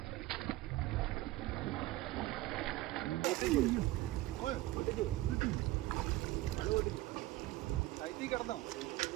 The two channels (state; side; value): quieter; left; 17.6 dB